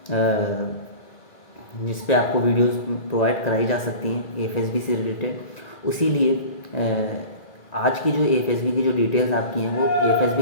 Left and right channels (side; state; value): right; late; 1.9 ms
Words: जिस पे आपको वीडियोस प्रोवाइड कराई जा सकती हैं एएफएसबी से रिलेटेड। उसीलिए आज की जो एएफएसबी की जो डिटेल्स आपकी हैं वो